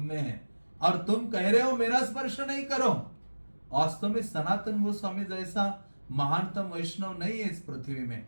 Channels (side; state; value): both; inverted; correlation -1.00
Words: में है, और तुम कह रहे हो मेरा स्पर्श नहीं करो। वास्तव में सनातन गोस्वामी जैसा महानतम वैष्णव नहीं है इस पृथ्वी में।